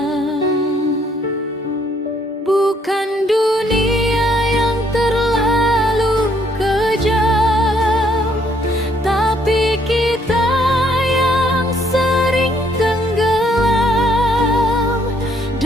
Bukan dunia yang terlalu kejam, tapi kita yang sering tenggelam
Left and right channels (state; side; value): normal; both; correlation 0.67